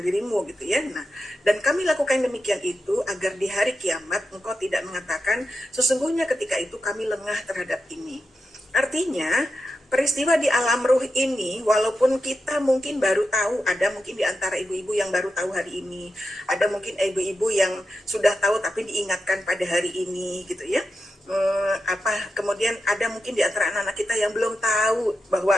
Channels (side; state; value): both; normal; correlation 0.89